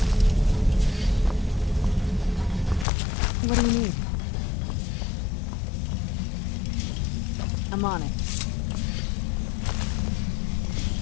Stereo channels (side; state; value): right; drops out; at 2.9 s